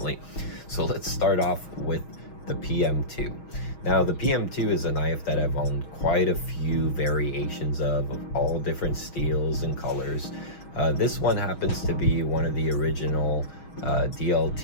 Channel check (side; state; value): right; late; 6.3 ms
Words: So let's start off with the PM2. Now the PM2 is a knife that I've owned quite a few variations of all different steels and colors. This one happens to be one of the original